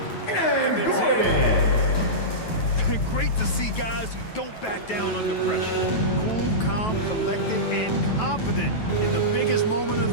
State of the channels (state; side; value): late; right; 9.2 ms